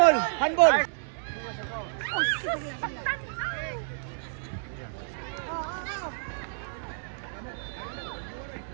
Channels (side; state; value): left; silent; digital silence